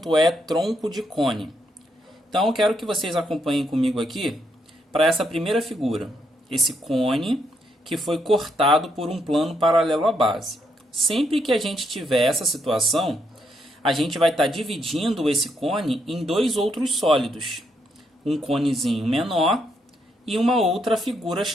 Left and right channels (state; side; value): normal; both; correlation 0.77